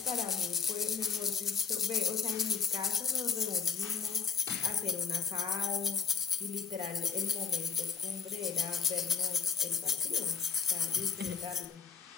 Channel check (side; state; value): right; quieter; 6.0 dB